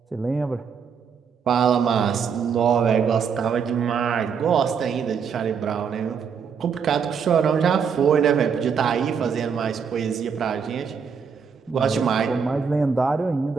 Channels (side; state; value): left; quieter; 6.5 dB